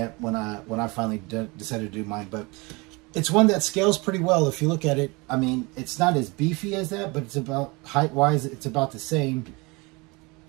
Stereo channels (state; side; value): quieter; left; 26.3 dB